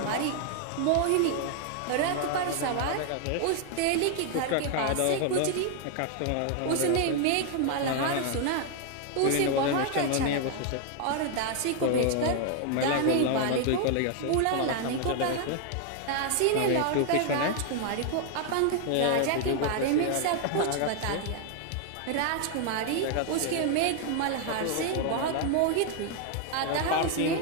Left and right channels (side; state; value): both; different; correlation 0.00